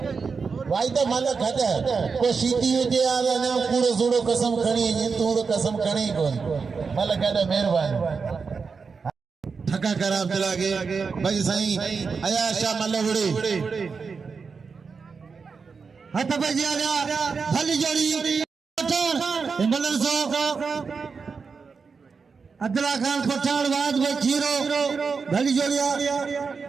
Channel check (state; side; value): quieter; left; 5.2 dB